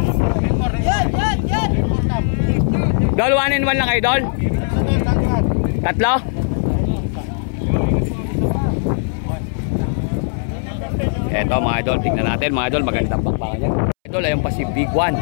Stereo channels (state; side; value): silent; right; 67 dB below the other